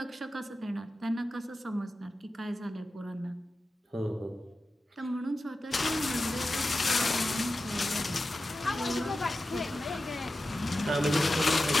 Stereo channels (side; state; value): both; normal; correlation 0.93